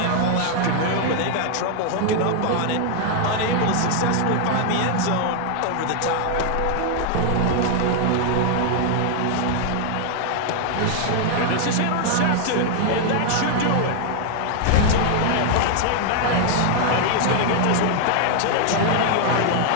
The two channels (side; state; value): both; different; correlation 0.00